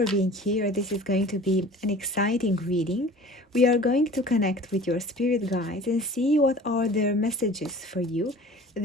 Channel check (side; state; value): both; normal; correlation 0.43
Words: being here. This is going to be an exciting reading. We are going to connect with your spirit guides and see what are their messages for you,